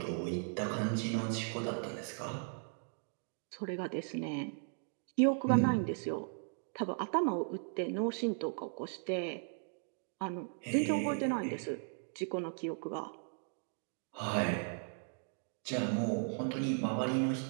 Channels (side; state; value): left; silent; 53 dB below the other